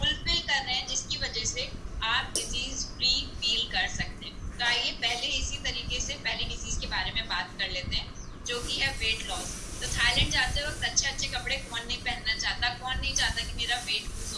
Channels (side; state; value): both; identical; correlation 1.00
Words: कर रहे हैं, जिसकी वजह से आप डिजीज फ्री फील कर सकते हैं। तो आइए पहले इसी तरीके से पहली डिजीज के बारे में बात कर लेते हैं, जो कि है वेट लॉस। तो थाईलैंड जाते वक्त अच्छे अच्छे कपड़े कौन नहीं पहनना चाहता, कौन नहीं चाहता कि मेरा वेट लूज